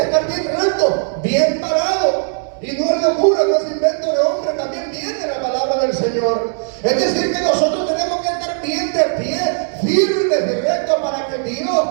estar bien recto, bien parado. Y no es locura, no es invento de hombre, también viene la palabra del Señor. Es decir, que nosotros tenemos que estar bien de pie, firmes y rectos, para que Dios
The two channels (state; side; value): silent; left; 63 dB below the other